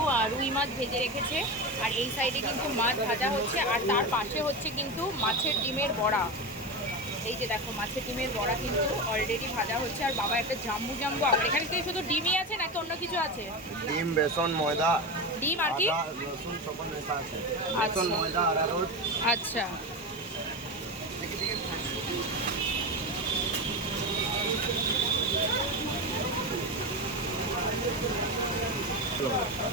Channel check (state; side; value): normal; both; correlation 0.20